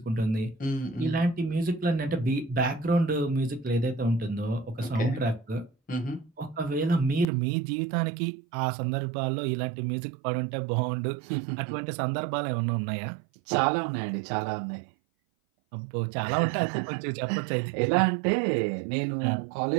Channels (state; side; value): drops out; left; at 7.2 s